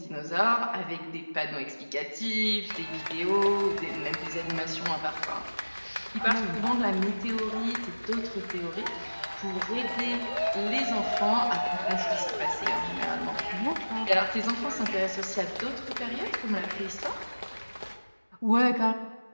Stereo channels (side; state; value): both; inverted; correlation -1.00